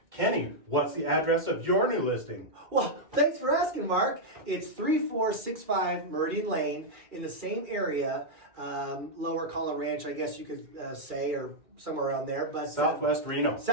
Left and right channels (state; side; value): late; left; 2.4 ms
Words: Kenny, what's the address of your new listing? Well, thanks for asking, Mark. It's 3465 Meridian Lane in the same area, Lower Collar Ranch, I guess you could say, or somewhere around there. But Southwest Reno.